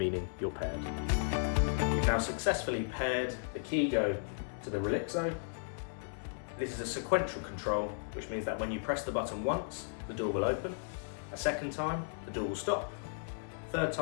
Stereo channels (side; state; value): right; silent; digital silence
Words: you're paired. You've now successfully paired the Keygo to the Relaxo. This is a sequential control, which means that when you press the button once, the door will open. A second time, the door will stop. Third